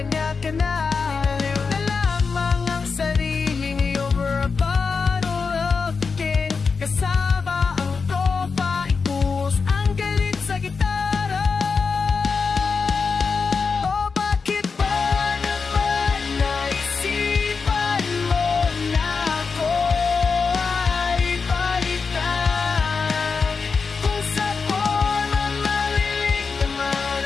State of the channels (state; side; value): quieter; right; 5.0 dB